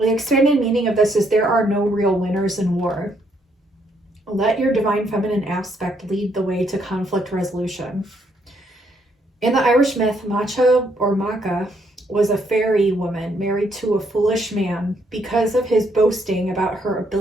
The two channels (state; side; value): normal; both; correlation 0.72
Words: expanded meaning of this is there are no real winners in war. Let your divine feminine aspect lead the way to conflict resolution. In the Irish myth, Macha or Macha was a fairy woman married to a foolish man. Because of his boasting about her